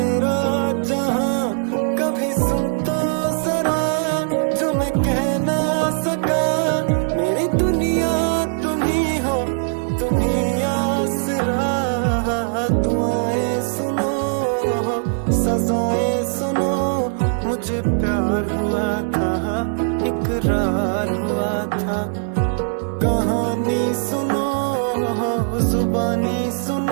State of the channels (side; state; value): left; silent; digital silence